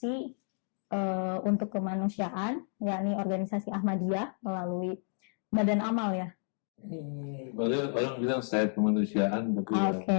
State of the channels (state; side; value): silent; right; 57 dB below the other